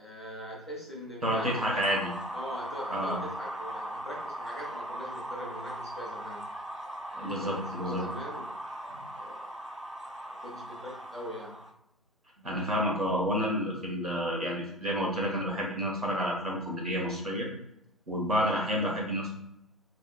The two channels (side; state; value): both; normal; correlation 0.36